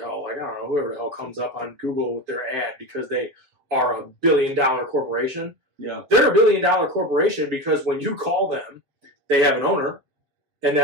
hell, like I don't know, whoever the hell comes up on Google with their ad because they are a $1 billion corporation. Yeah. They're a $1 billion corporation because when you call them, they have an owner, and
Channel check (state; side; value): late; left; 7.0 ms